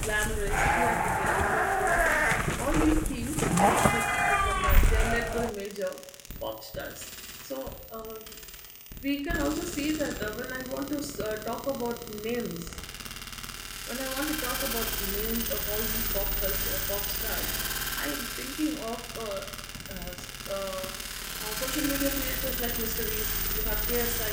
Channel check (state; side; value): identical; both; correlation 1.00